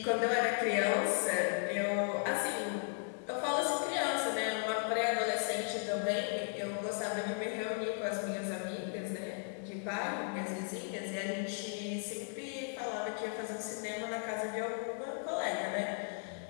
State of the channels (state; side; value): silent; right; 54 dB below the other